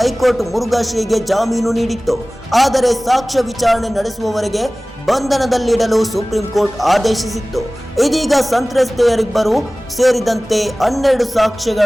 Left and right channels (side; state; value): both; normal; correlation 0.98